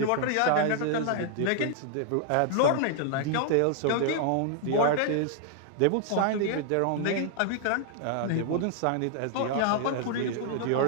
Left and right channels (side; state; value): both; different; correlation -0.01